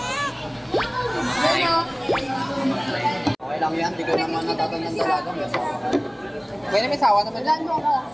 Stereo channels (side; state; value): both; identical; correlation 1.00